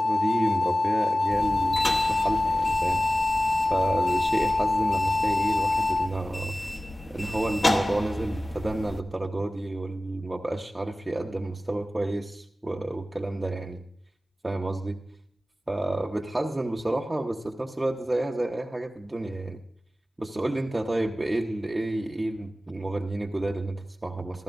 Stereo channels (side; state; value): both; normal; correlation 0.96